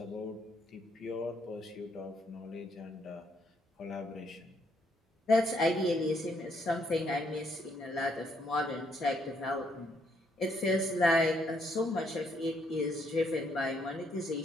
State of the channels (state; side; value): normal; both; correlation 0.72